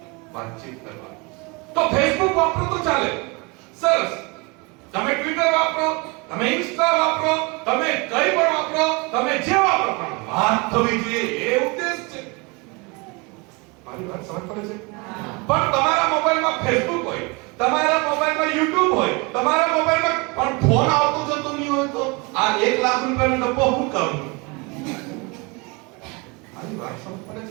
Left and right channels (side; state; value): left; quieter; 28.2 dB